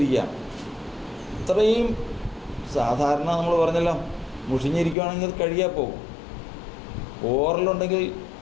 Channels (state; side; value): drops out; right; at 5.0 s